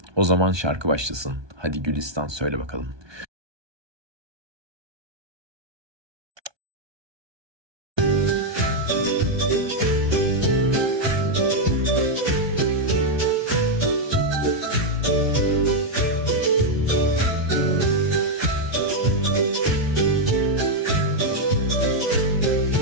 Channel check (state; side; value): late; left; 1.2 ms